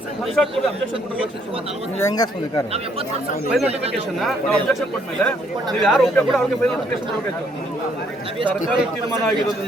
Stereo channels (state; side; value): normal; both; correlation 0.68